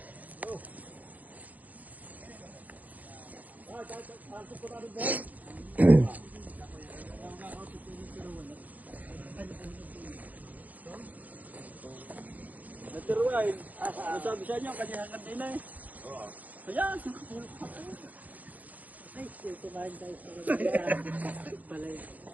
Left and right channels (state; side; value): late; left; 0.079 ms